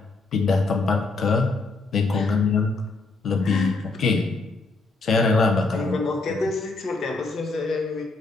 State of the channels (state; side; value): quieter; right; 3.6 dB